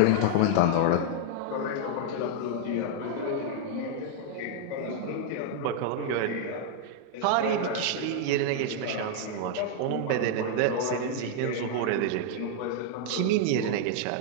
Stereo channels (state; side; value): different; both; correlation 0.00